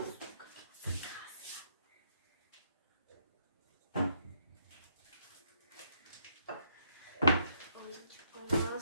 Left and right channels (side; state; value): both; inverted; correlation -0.73